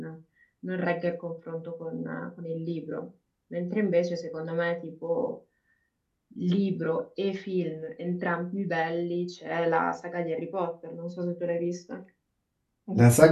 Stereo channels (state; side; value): identical; both; correlation 1.00